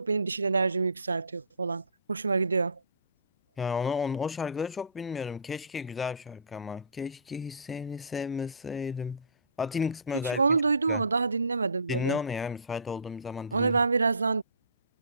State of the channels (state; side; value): inverted; both; correlation -0.45